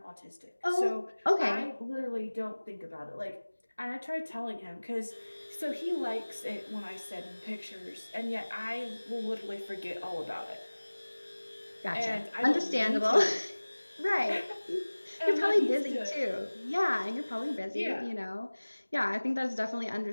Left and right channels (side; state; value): both; inverted; correlation -1.00